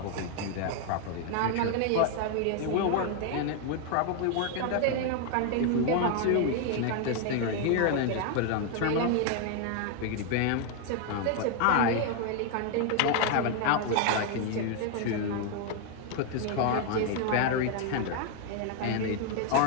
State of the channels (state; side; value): different; both; correlation 0.00